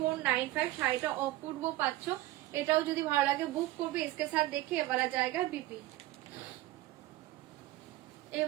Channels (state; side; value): quieter; left; 16.9 dB